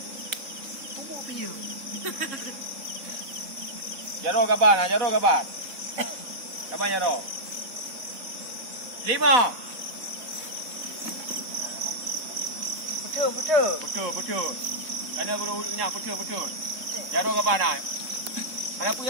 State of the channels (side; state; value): left; late; 4.0 ms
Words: Apa dia? Jaro kabar, jaro kabar. Kabar jaro. 5. Betul. Karena guru-gurunya betul. Jaro kabar nak. Ada